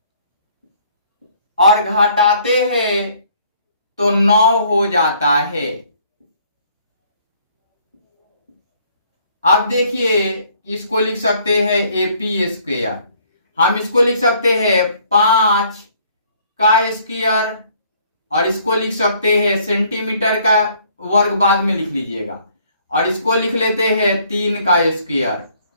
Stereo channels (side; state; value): both; inverted; correlation -0.61